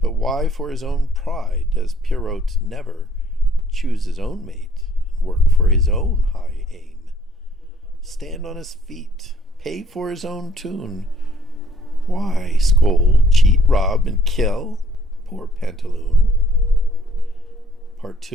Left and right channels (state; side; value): normal; both; correlation 0.62